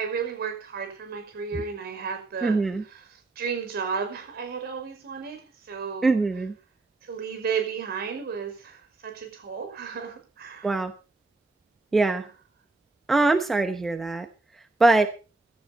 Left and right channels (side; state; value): left; quieter; 3.2 dB